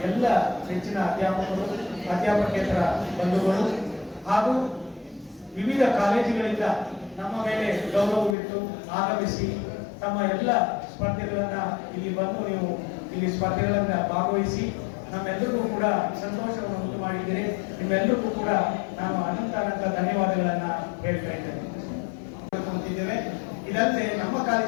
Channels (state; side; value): drops out; right; at 8.3 s